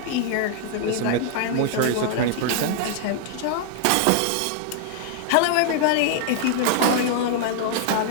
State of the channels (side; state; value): both; different; correlation 0.00